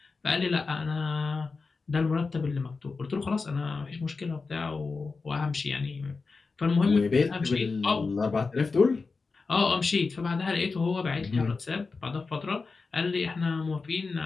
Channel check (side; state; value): right; quieter; 4.3 dB